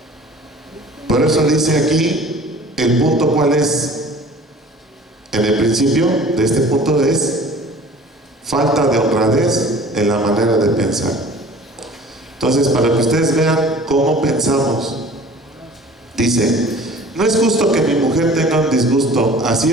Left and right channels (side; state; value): both; normal; correlation 0.46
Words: Por eso dice aquí el punto, ¿cuál es? En el principio de este punto es falta de honradez en la manera de pensar. Entonces, para que ustedes vean cómo pensamos, dice: no es justo que mi mujer tenga un disgusto, así